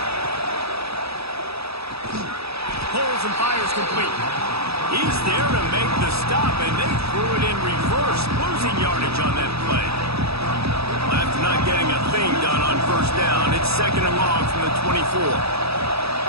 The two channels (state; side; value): late; left; 0.77 ms